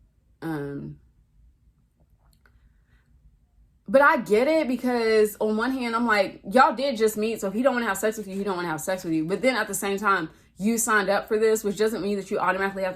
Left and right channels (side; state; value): both; identical; correlation 1.00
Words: But I get it, because on one hand, I'm like, y'all did just meet. So if he don't want to have sex with you, he don't want to have sex with you. But then at the same time, you signed up for this, which doesn't mean that you automatically have